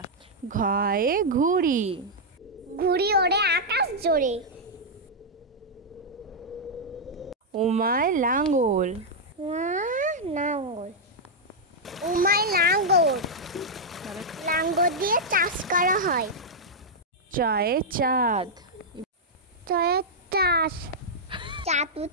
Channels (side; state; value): both; normal; correlation -0.05